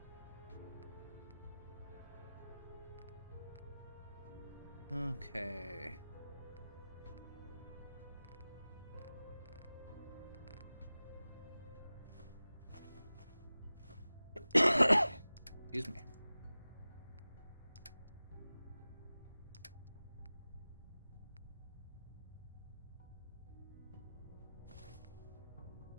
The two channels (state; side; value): inverted; both; correlation -0.96